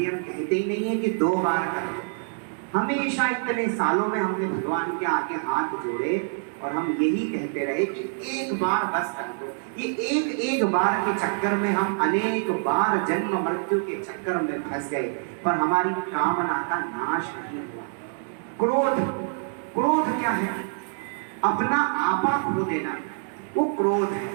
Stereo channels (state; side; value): silent; left; 61 dB below the other